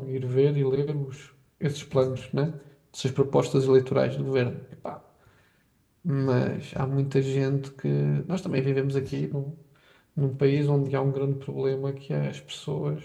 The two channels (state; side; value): identical; both; correlation 1.00